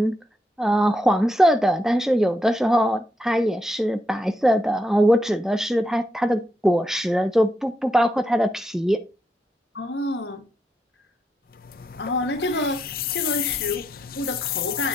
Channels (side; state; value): both; normal; correlation 0.81